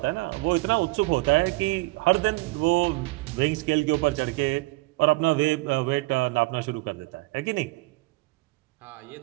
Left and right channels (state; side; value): quieter; left; 22.9 dB